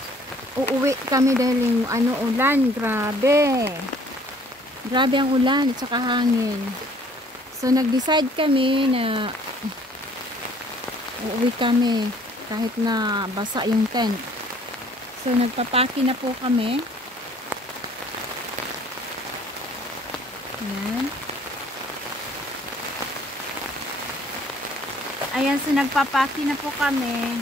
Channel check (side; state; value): both; normal; correlation 0.57